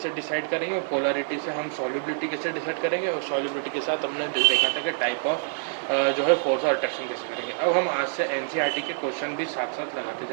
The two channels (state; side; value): silent; left; digital silence